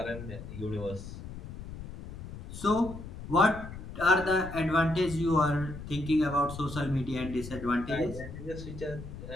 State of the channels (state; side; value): noise; left; rumble, 11 dB below the sound